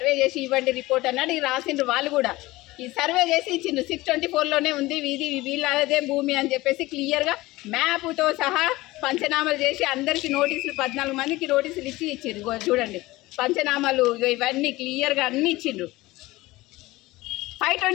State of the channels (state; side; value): quieter; right; 19.4 dB